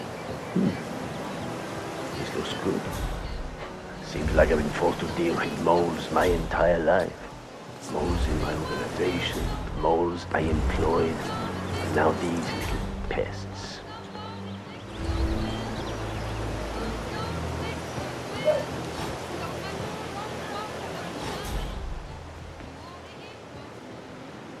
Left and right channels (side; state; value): both; identical; correlation 1.00